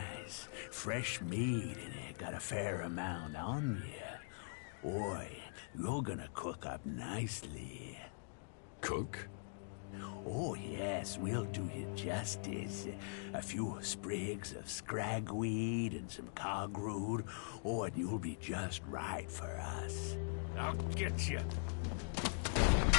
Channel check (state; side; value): silent; right; digital silence